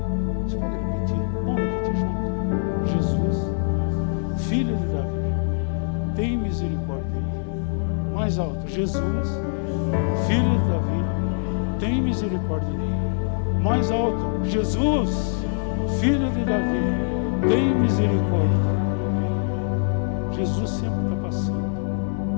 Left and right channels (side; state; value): right; silent; digital silence